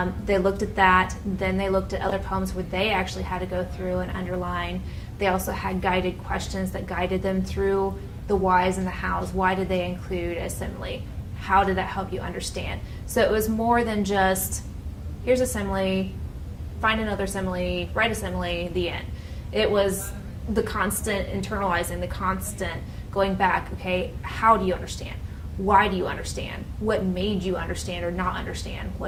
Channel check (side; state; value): both; identical; correlation 1.00